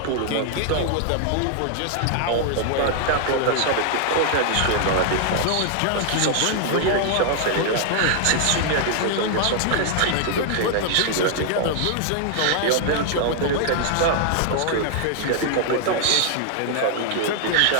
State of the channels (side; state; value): both; different; correlation 0.00